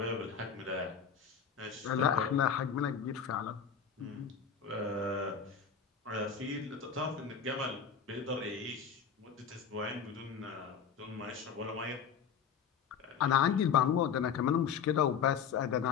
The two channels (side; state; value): right; quieter; 7.1 dB